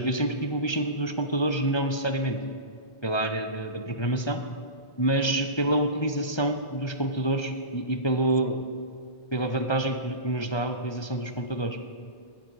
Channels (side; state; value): right; late; 1.3 ms